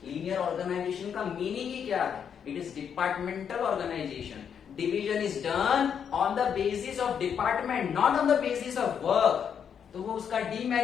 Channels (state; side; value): quieter; right; 7.7 dB